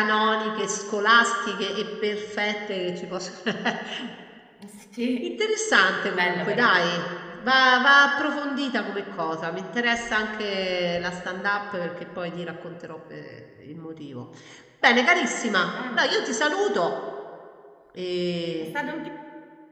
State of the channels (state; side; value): identical; both; correlation 1.00